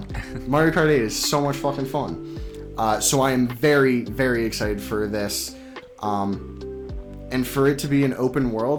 Mario Kart 8 is so much fucking fun. So I am very, very excited for this. And for it to be an open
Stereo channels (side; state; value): both; identical; correlation 1.00